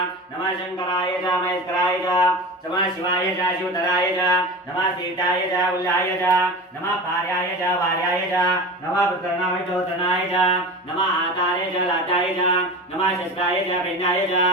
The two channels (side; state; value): both; normal; correlation 0.30